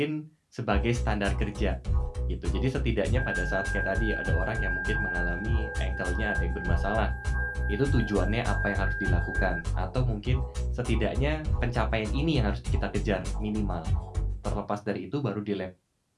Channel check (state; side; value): identical; both; correlation 1.00